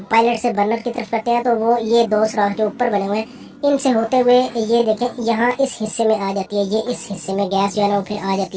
पायलट से बर्नर की तरफ करते हैं, तो वो ये दो सुराख जो ऊपर बने हुए हैं, इनसे होते हुए ये देखें यहाँ इस हिस्से में आ जाती है। ये इस हिस्से में गैस जो है ना वो फिर आ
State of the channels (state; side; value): identical; both; correlation 1.00